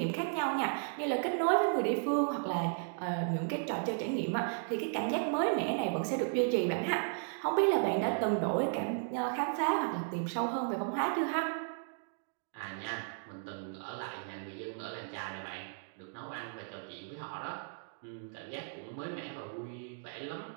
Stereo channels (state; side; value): silent; left; digital silence